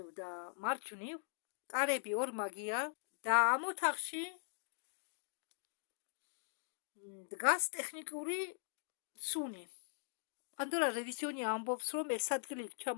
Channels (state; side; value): silent; right; digital silence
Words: და მარჯვნივ, კარები ორმაგია და ამ ოთახში დგას ტექნიკური სუნი. პანდორა რევიზიონი ამბობს, რომ ეს ადგილი